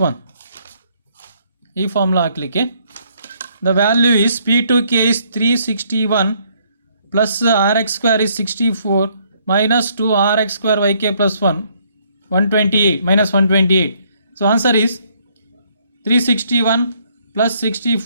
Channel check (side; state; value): both; inverted; correlation -0.68